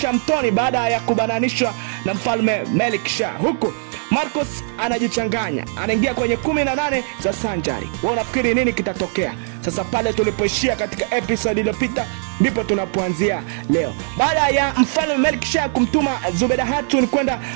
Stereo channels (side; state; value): left; silent; 58 dB below the other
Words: mtoni baada ya kubananishwa na mfalme Melik Shah. Huku Marcus anajichanganya, anaingia kwenye 18 za Sanjari. Wewe unafikiri nini kitatokea? Sasa pale tulipoishia katika episode iliyopita ndipo tunapoanzia leo. Baada ya mfalme Melik Shah kumtuma Zubeda Hatun kwenda